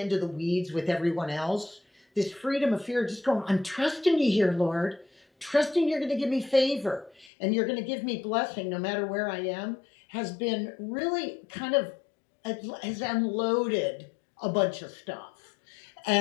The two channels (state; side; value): drops out; right; at 7.3 s